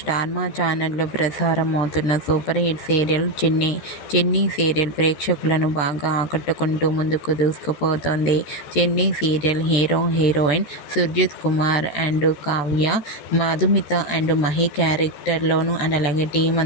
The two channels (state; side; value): late; right; 14 ms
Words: Maa ఛానల్లో ప్రసారం అవుతున్న super hit serial Chinni serial ప్రేక్షకులను బాగా ఆకట్టుకుంటూ ముందుకు దూసుకుపోతోంది. Chinni serial hero heroine Surjith Kumar and Kavya, Madhumitha and Mahi క్యారెక్టర్లోను అండ్ అలాగే టీం